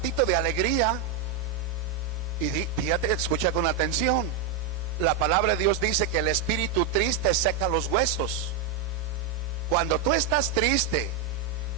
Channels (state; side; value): quieter; left; 6.1 dB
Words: de alegría. Y fíjate, escucha con atención. La palabra de Dios dice que el espíritu triste seca los huesos. Cuando tú estás triste